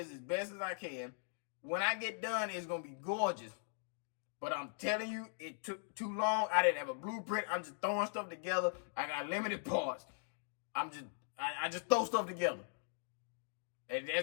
as best as I can. When I get done, it's going to be gorgeous. But I'm telling you, it took too long. I didn't have a blueprint. I'm just throwing stuff together. I got limited parts. I just throw stuff together. And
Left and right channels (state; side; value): silent; right; digital silence